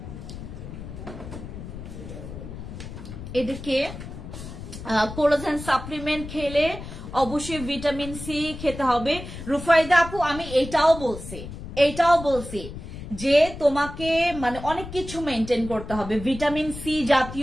এদেরকে কোলাজেন সাপ্লিমেন্ট খেলে অবশ্যই ভিটামিন সি খেতে হবে। রুফাইদা আপু আমি এটাও বলছি যে তোমাকে মানে অনেক কিছু মেনটেন করতে হবে, ভিটামিন সি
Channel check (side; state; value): left; noise; rumble, 11 dB below the sound